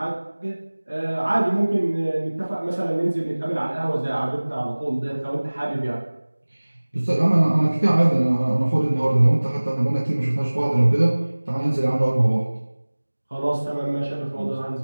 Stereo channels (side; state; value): both; inverted; correlation -1.00